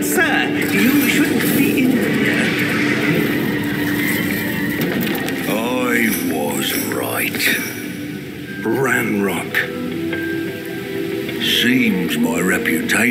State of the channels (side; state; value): both; identical; correlation 1.00